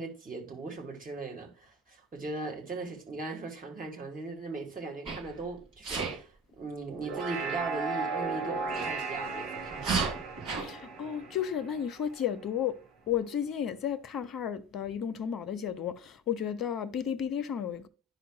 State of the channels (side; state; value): both; normal; correlation 0.35